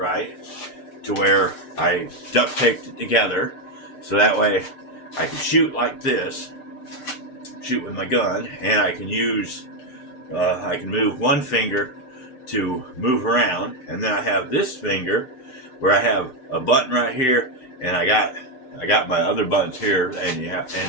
to where I duct taped it together, so that way I can shoot like this, shoot with my gun, and I can use, I can move one finger to move around, and then I have this finger where I have a button right here, and I got my other buttons here,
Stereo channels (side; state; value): right; late; 6.7 ms